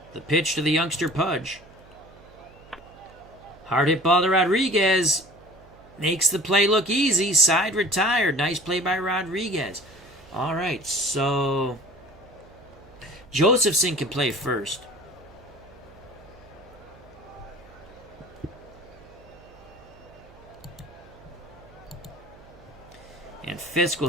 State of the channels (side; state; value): right; noise; hum, 24 dB below the sound